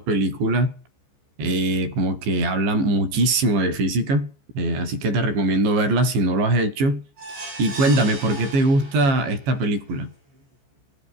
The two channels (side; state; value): left; late; 14 ms